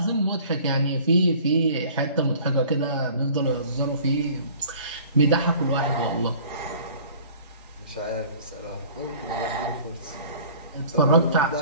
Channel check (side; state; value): both; inverted; correlation -0.49